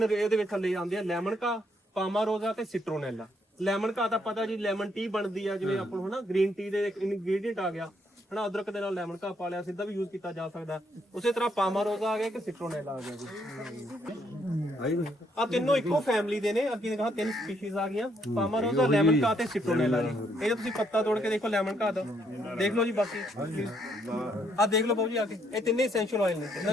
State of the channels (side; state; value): both; normal; correlation 0.72